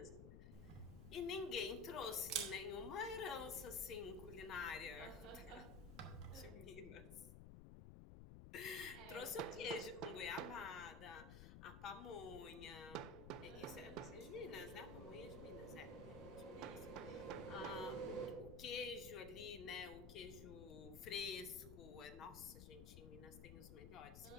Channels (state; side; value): noise; left; rumble, 10 dB below the sound